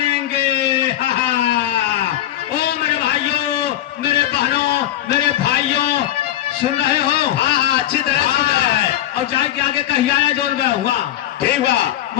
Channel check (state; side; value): quieter; right; 12.9 dB